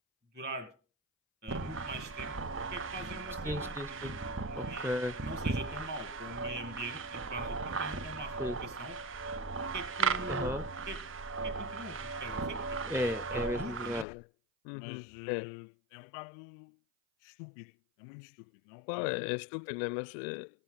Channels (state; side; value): drops out; right; at 14.1 s